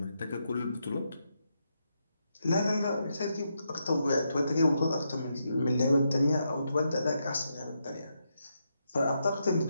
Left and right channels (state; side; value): inverted; both; correlation -0.82